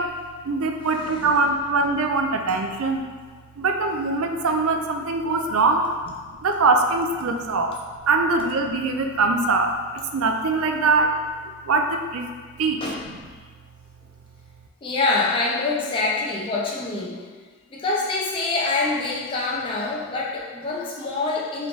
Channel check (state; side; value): normal; both; correlation 0.05